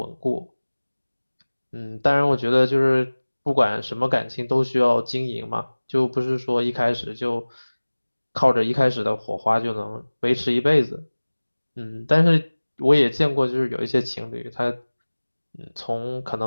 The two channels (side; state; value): both; inverted; correlation -1.00